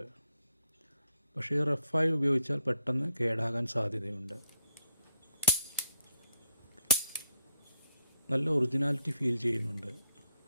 പക്ഷേ റഫായി ഉപയോഗിച്ചാൽ പെട്ടെന്ന് കേടാകാൻ സാധ്യതയുണ്ട്. നല്ല ഒറിജിനാലിറ്റി ഫീൽ ചെയ്യുന്നുണ്ട്.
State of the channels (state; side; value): inverted; both; correlation -0.76